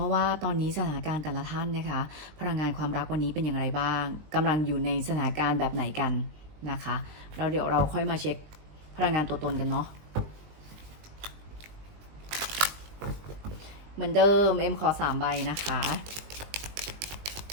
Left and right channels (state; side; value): late; left; 19 ms